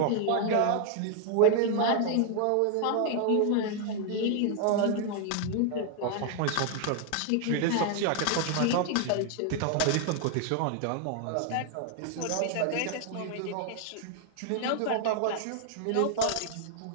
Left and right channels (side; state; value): both; different; correlation 0.00